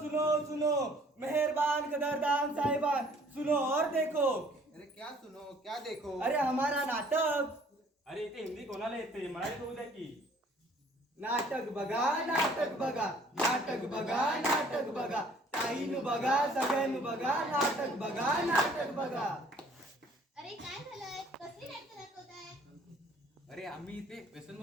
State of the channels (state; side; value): normal; both; correlation 0.57